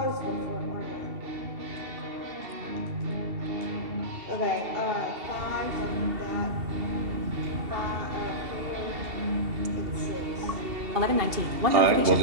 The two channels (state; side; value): late; left; 2.7 ms